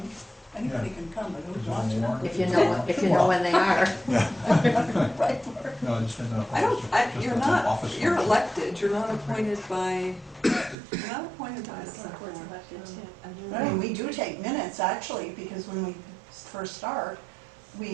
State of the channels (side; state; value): left; drops out; at 10.8 s